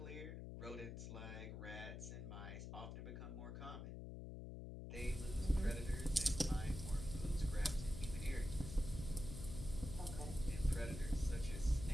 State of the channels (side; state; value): left; noise; hum, 7 dB below the sound